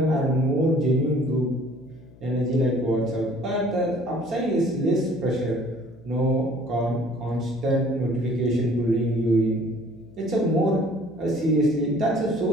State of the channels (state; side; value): noise; left; hum, 24 dB below the sound